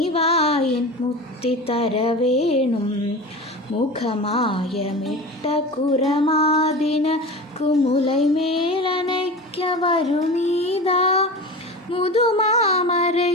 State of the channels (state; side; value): normal; both; correlation 0.31